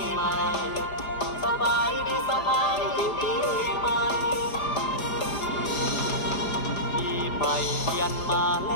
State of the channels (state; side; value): late; right; 5.1 ms